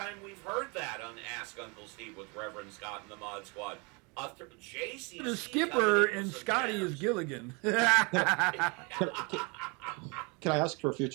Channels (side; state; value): left; quieter; 30.6 dB